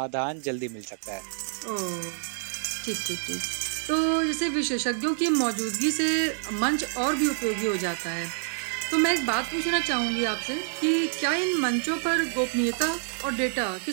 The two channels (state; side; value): silent; left; digital silence